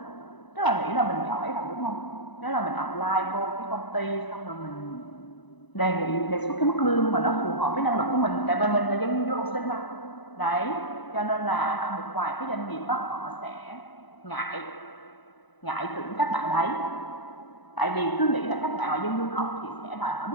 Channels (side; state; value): right; late; 1.0 ms